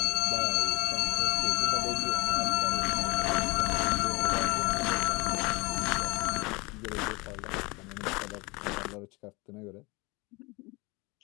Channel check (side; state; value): right; quieter; 25.9 dB